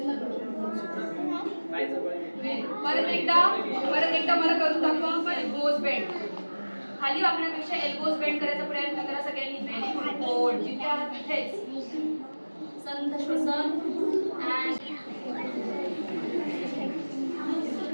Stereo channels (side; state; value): both; inverted; correlation -1.00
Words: परत एकदा मला करून दाखवा. Elbows bend. खाली वाकण्यापेक्षा एल्बोज बेंड करायचा प्रयत्न करा सगळ्यांनी. Very good. होल्ड. जिथे आहात तिथेच. संथ श्वसन.